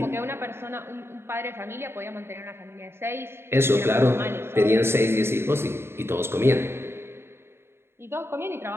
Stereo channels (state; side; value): late; left; 0.12 ms